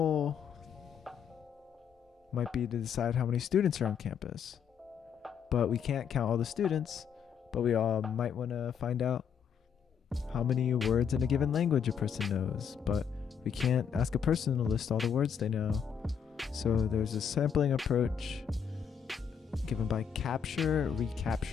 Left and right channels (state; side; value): quieter; right; 7.5 dB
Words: might be to decide how many students are on campus. But we can't count all the students, but we all might want to find out how many words in a given language a person knows. But we can't ask a person to list all the words they know. So there's a sampling approach given by